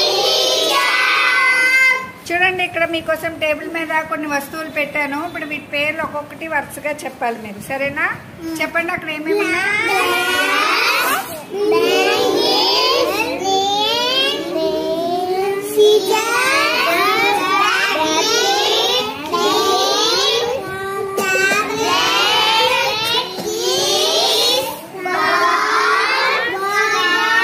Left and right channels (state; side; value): identical; both; correlation 1.00